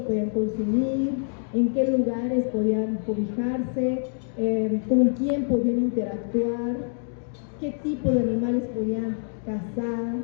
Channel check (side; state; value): right; silent; 61 dB below the other